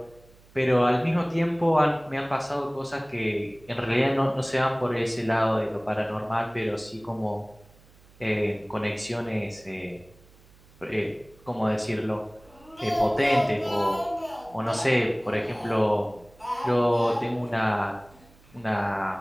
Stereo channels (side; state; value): right; noise; hum, 27 dB below the sound